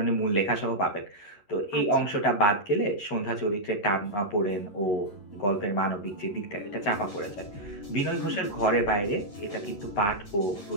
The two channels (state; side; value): late; right; 11 ms